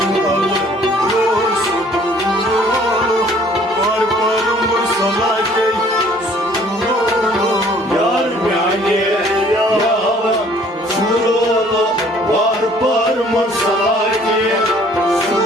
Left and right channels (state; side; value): normal; both; correlation 0.56